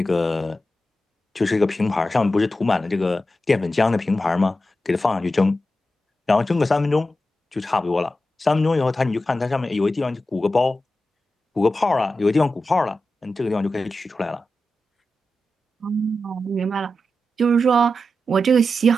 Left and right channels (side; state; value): both; normal; correlation 0.90